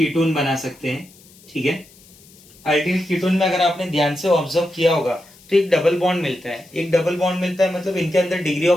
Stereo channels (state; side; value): noise; left; hiss, 25 dB below the sound